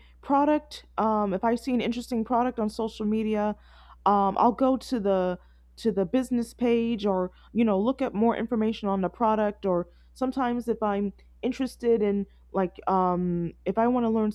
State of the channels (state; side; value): identical; both; correlation 1.00